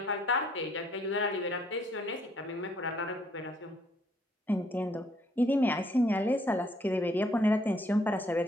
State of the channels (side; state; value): both; normal; correlation 0.67